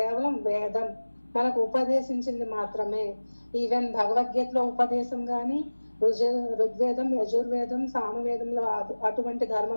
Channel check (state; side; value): inverted; both; correlation -1.00